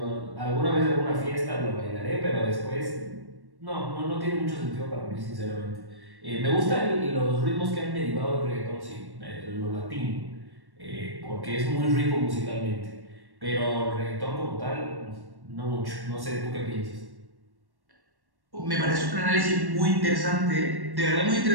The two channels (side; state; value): left; late; 1.1 ms